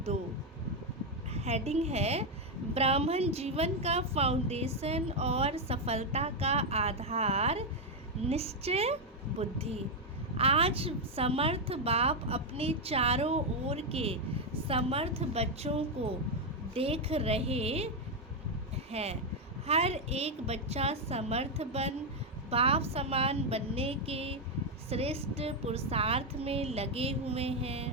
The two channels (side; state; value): both; normal; correlation 0.03